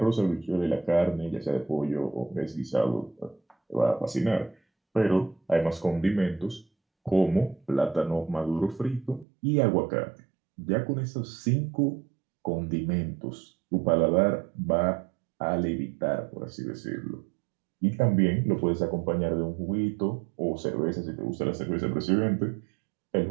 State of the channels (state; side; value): drops out; left; at 9.2 s